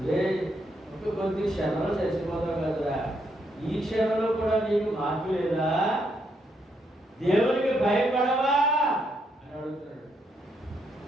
రే కొద్ది క్షణంలో చచ్చిపోతావు కదరా, ఈ క్షణంలో కూడా నీకు మార్పు లేదా, దేవునికి భయపడవా అని అడుగుతున్నాడు.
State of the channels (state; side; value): normal; both; correlation 0.77